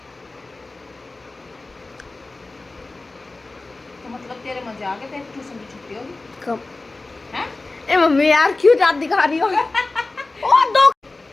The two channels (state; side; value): quieter; right; 3.3 dB